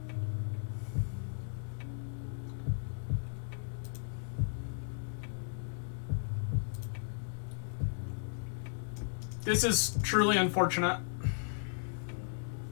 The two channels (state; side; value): silent; right; digital silence